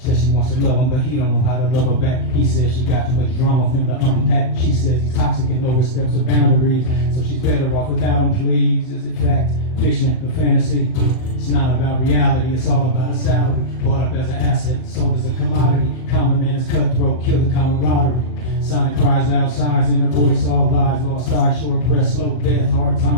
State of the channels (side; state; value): right; late; 39 ms